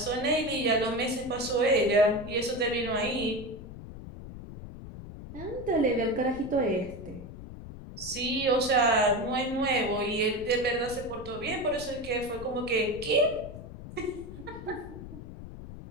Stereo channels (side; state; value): left; noise; rumble, 12 dB below the sound